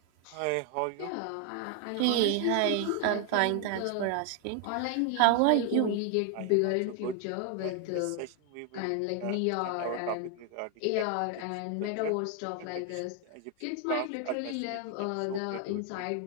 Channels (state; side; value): different; both; correlation 0.00